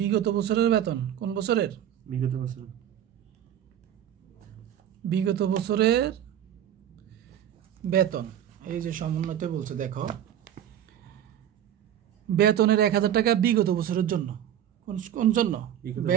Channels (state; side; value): quieter; left; 10.5 dB